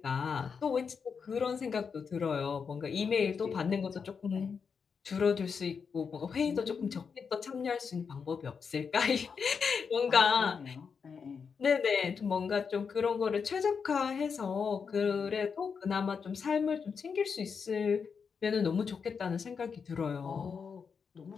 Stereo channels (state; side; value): quieter; right; 6.0 dB